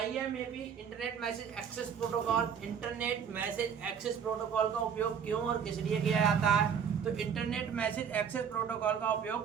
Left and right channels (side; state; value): left; quieter; 7.4 dB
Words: internet message access protocol. Internet message access protocol का उपयोग क्यों और किस लिए किया जाता है? तो इंटरनेट मैसेज एक्सेस प्रोटोकॉल का